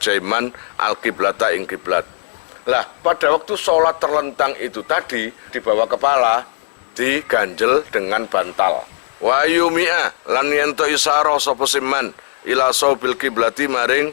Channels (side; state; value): right; silent; digital silence